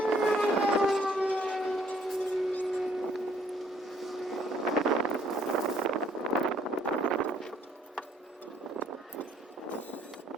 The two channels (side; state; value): both; normal; correlation 0.64